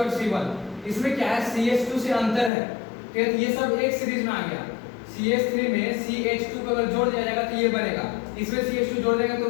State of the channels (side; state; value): right; drops out; at 2.5 s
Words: इसमें क्या है? CH2 से अंतर है। तो ये सब एक सीरीज में आ गया। CH3 में CH2 को अगर जोड़ दिया जाएगा तो ये बनेगा, इसमें CH2 जोड़ देंगे तो